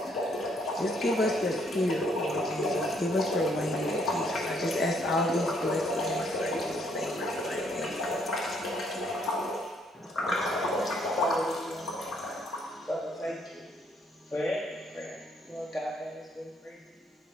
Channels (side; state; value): both; normal; correlation 0.69